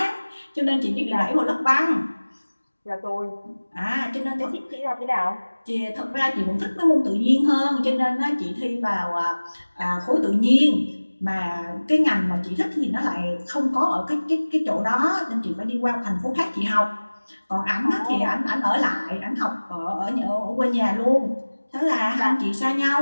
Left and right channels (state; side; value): inverted; both; correlation -1.00